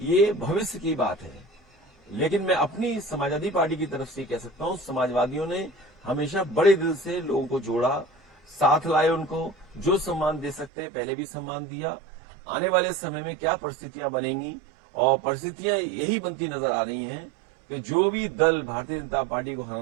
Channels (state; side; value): drops out; left; at 10.7 s